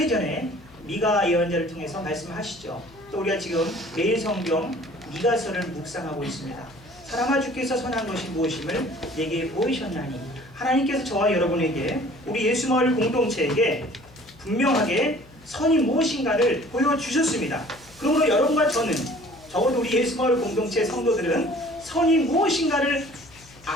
미가 예언자를 통해서 말씀하시죠. 또 우리가 지금 매일 성경 미가서를 묵상하고 있습니다. 사람아 주께서 선한 것이 무엇임을 내게 보이셨나니 하나님께서 저와 여러분에게 우리 예수마을 공동체에게 분명하게 선이 무엇인가를 보여주셨습니다. 그러므로 여러분과 저는 적어도 우리 예수마을 공동체 성도들은 선이 무엇인가를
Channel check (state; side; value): noise; left; hum, 24 dB below the sound